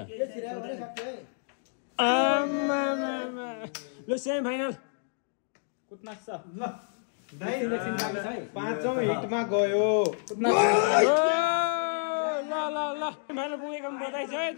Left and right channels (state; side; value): silent; right; digital silence